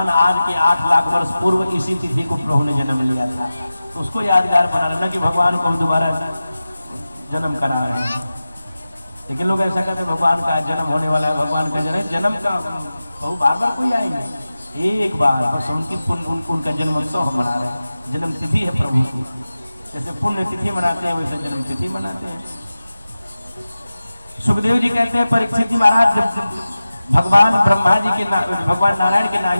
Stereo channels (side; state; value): both; inverted; correlation -0.95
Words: आज के 8 लाख वर्ष पूर्व इसी तिथि को प्रभु ने जन्म लिया था। तो उसको यादगार बना रहे हैं, कि भगवान को हम दोबारा जन्म करा रहे हैं। लेकिन लोग ऐसा कहते हैं भगवान का जन्म होने वाला है, भगवान का जन्म का बहु बार कोई आएंगे, एक बार बस उनका जन्मोत्सव हम मना रहे हैं। जन्म तिथि है प्रभु की। जैसे पुण्य तिथि मनाते हैं वैसे जन्म तिथि मनाते हैं। सुखदेव जी कहते हैं परीक्षित जी महाराज, जब भगवान ब्रह्मा जी के भगवान नारायण के